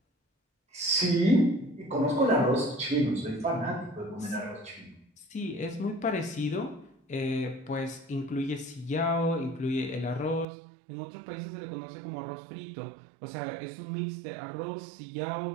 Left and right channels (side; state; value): left; drops out; at 10.5 s